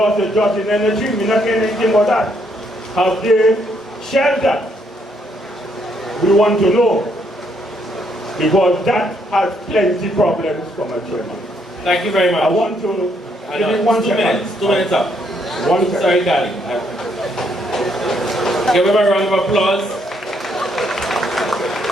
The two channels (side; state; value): both; normal; correlation 0.72